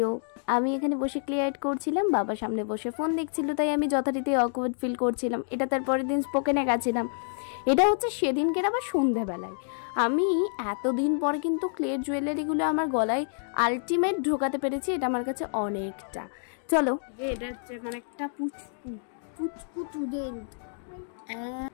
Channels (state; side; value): silent; right; digital silence